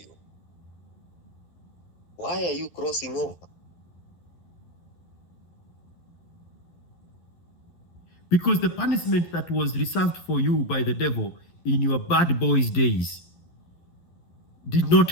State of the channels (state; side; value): late; right; 11 ms